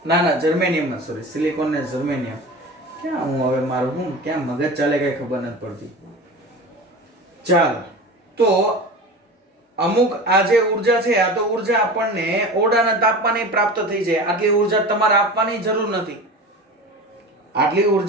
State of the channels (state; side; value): normal; both; correlation 0.32